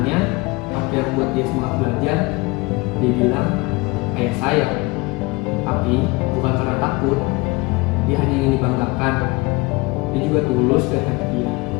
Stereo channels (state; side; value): quieter; right; 24.2 dB